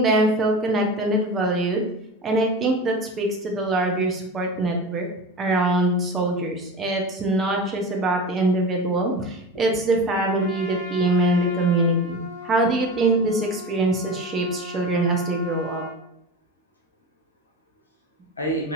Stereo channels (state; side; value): normal; both; correlation 0.29